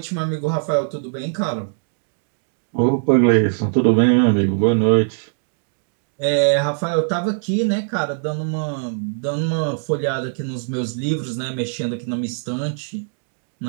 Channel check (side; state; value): left; silent; digital silence